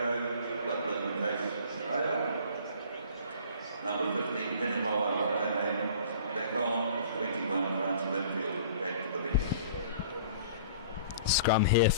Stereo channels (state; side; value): inverted; both; correlation -0.48